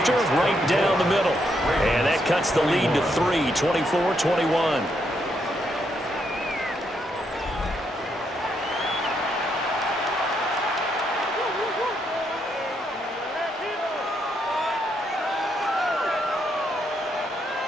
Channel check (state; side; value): normal; both; correlation 0.77